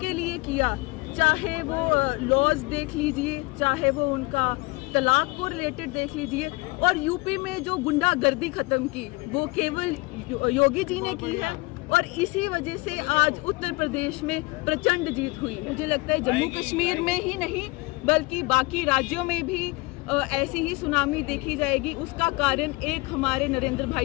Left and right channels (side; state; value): right; quieter; 24.0 dB